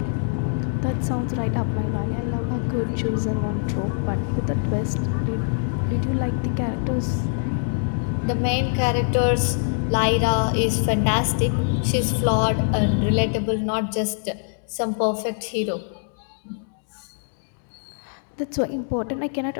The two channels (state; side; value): silent; right; digital silence